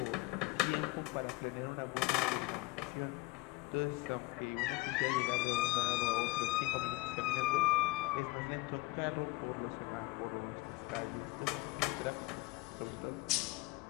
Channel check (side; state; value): right; quieter; 21.0 dB